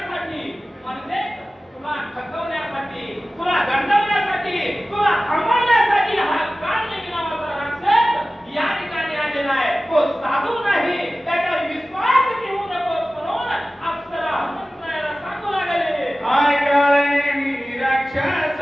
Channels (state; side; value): normal; both; correlation 0.96